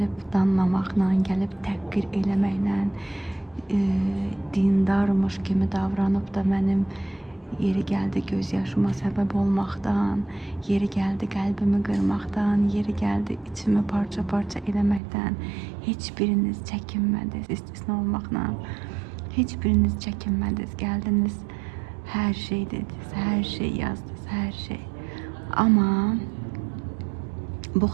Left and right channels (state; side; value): drops out; left; at 15.0 s